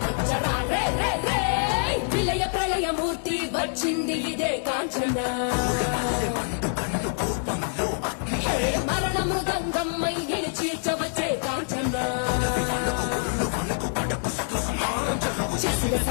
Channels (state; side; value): silent; right; digital silence